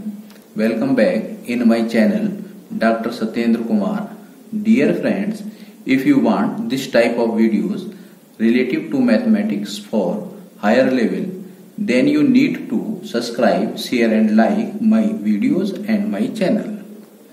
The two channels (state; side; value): identical; both; correlation 1.00